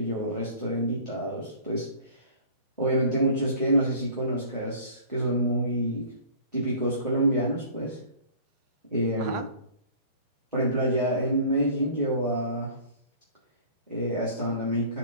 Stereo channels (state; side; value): inverted; both; correlation -0.46